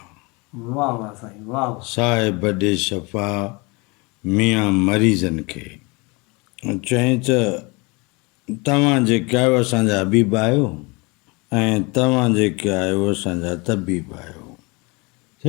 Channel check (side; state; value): right; quieter; 27.5 dB